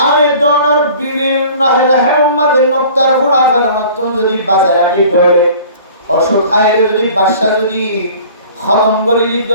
আয়জনের বিভিন্ন রেহমর মাঝে নক্তার ফুড়া ফেলনতুন যদি বাজায় রাখি ধরে অসুখ খাইলে যদি বাচ্চা যদি খতম করে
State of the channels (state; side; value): inverted; both; correlation -0.46